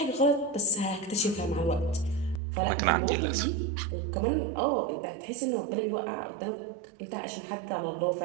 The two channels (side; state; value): left; drops out; at 2.4 s